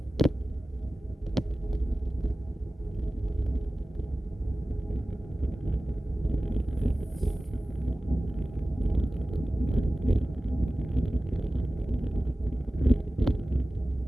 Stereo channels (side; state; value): both; normal; correlation 0.96